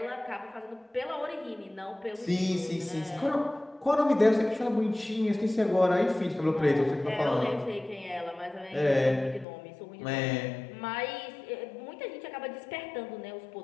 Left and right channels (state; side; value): drops out; right; at 9.5 s